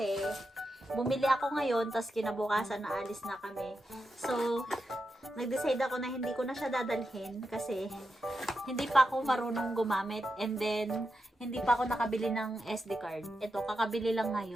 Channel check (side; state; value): both; normal; correlation 0.87